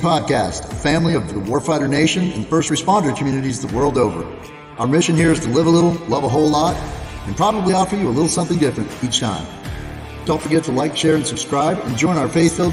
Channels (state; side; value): identical; both; correlation 1.00